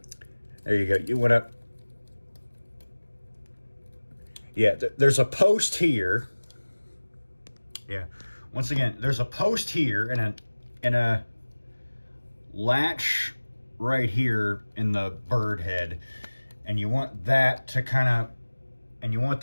There you go. You want to, yeah, there's a post here. Yeah. Once again, there's a post here and a latch right here in the bird head. And you want that to kind of, and you want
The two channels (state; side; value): inverted; both; correlation -1.00